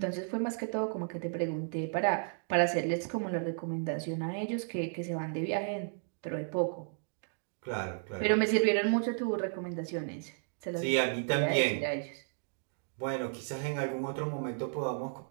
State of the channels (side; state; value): left; silent; digital silence